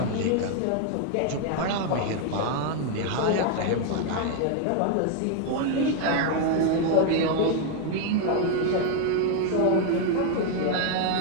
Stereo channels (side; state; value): both; different; correlation 0.00